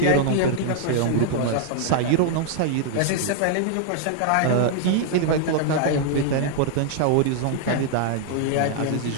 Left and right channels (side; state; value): both; different; correlation 0.00